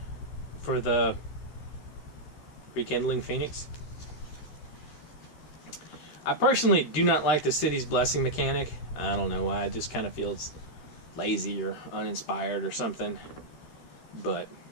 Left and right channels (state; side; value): late; right; 13 ms